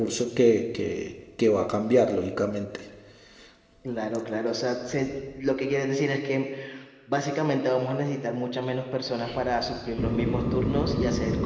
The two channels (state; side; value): identical; both; correlation 1.00